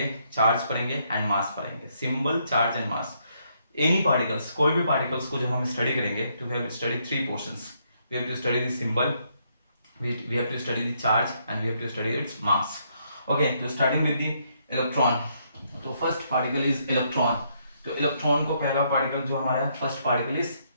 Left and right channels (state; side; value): inverted; both; correlation -0.73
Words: चार्ज पढ़ेंगे एंड मास पढ़ेंगे। Symbol, charge and mass. Any particles, कोई भी पार्टिकल्स को जब हम स्टडी करेंगे तो we have to study 3 portions. We have to study the symbol, we have to study the charge and we have to study its mass. Okay, so starting with the electron. तो first particle is electron. तो electron को पहला particle जो हमारा है, first particle is